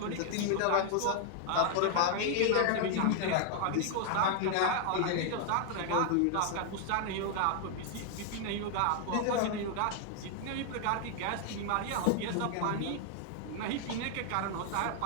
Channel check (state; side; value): different; both; correlation 0.00